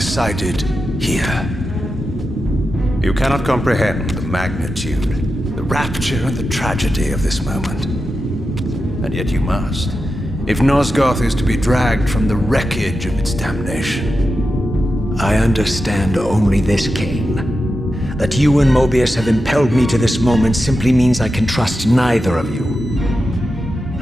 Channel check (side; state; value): both; normal; correlation 0.90